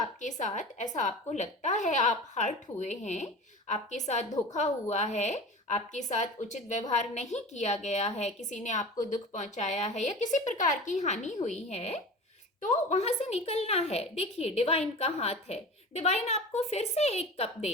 साथ ऐसा आपको लगता है, आप हर्ट हुए हैं, आपके साथ धोखा हुआ है, आपके साथ उचित व्यवहार नहीं किया गया है, किसी ने आपको दुख पहुंचाया है या किसी प्रकार की हानि हुई है, तो वहां से निकलना है। देखिए डिवाइन का हाथ है, डिवाइन आपको फिर से एक कप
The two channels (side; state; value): both; normal; correlation 0.35